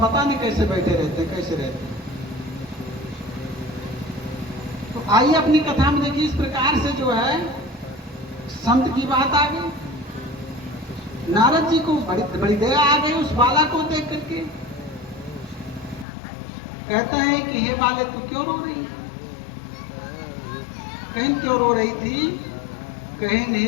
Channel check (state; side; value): drops out; right; at 16.1 s